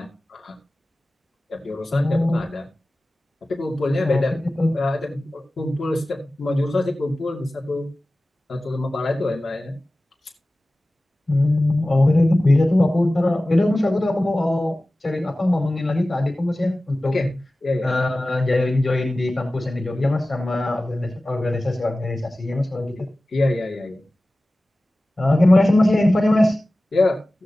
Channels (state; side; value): normal; both; correlation 0.96